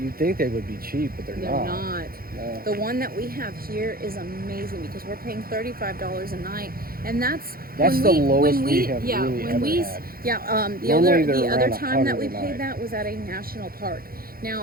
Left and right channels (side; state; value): left; late; 0.43 ms